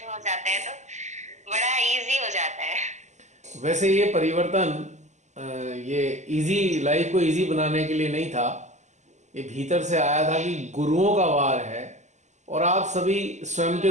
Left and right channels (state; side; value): late; left; 0.34 ms